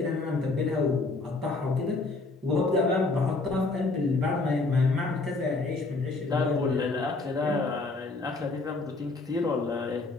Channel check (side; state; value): right; quieter; 3.5 dB